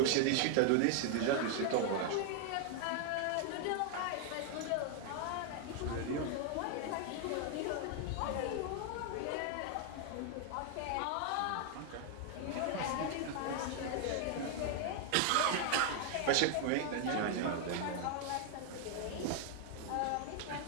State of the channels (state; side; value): different; both; correlation 0.00